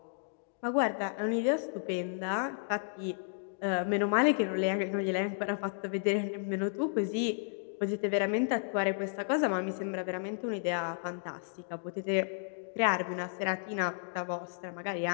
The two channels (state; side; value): silent; right; digital silence